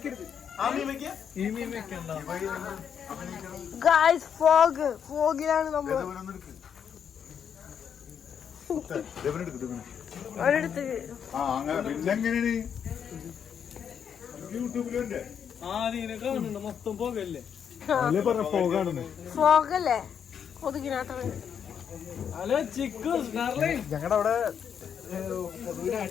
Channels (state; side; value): quieter; right; 7.8 dB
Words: ഗായ്സ് ഫോഗിലാണ് നമ്മൾ ഒരിടത്ത് ഫോഗല്ലേ കൊതുകിനാട്ട. ഞങ്ങളുടെ അവിടെ